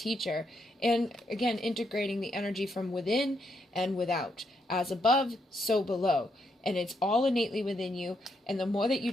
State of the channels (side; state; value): both; normal; correlation 0.78